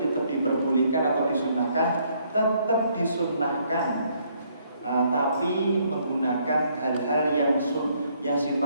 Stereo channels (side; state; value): both; inverted; correlation -0.69